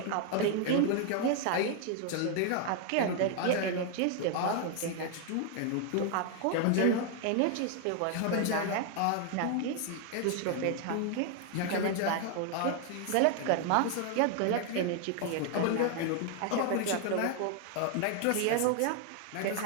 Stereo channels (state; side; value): different; both; correlation 0.00